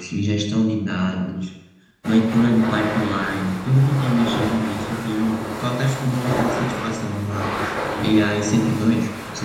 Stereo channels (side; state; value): both; identical; correlation 1.00